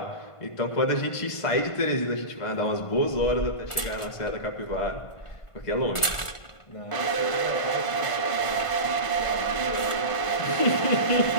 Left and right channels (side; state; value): right; late; 1.5 ms